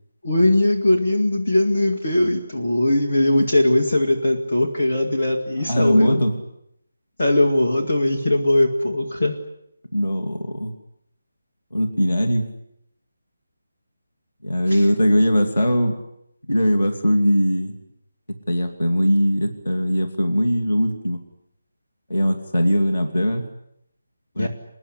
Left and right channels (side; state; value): both; inverted; correlation -0.96